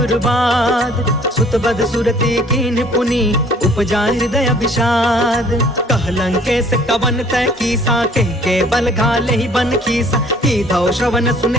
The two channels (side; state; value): both; normal; correlation 0.55